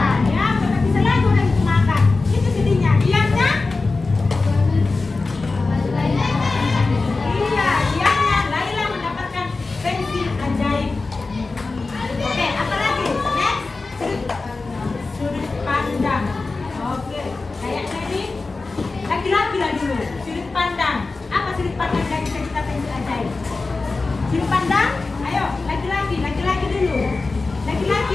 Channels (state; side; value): quieter; right; 3.7 dB